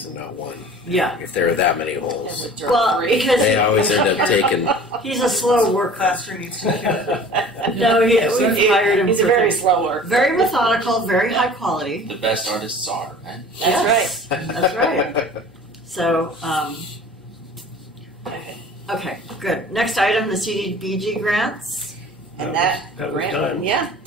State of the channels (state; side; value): normal; both; correlation 0.44